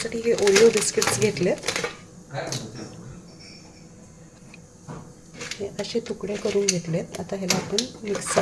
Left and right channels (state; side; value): identical; both; correlation 1.00